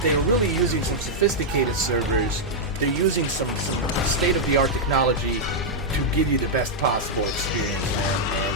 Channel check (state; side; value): normal; both; correlation -0.04